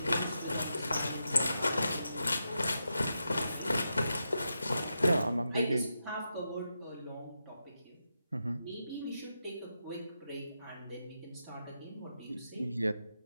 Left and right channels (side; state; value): both; inverted; correlation -0.86